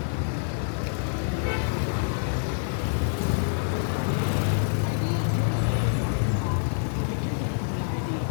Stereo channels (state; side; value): silent; right; digital silence